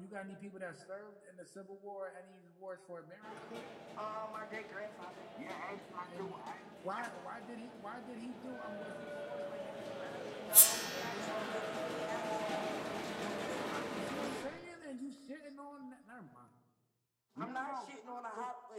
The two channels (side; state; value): both; identical; correlation 1.00